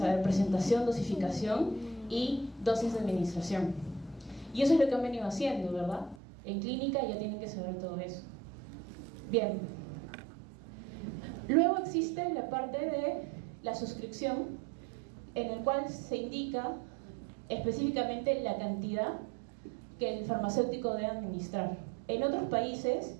presentación, dosificación y dosis de administración. Y eso es lo que han venido haciendo, ¿verdad? En clínica ya tienen que saber todo eso. Bien. Luego existe la parte de la suscripción, en el cual se indica específicamente la cantidad que el farmacéutico debe administrar. En otros países,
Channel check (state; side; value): drops out; left; at 6.2 s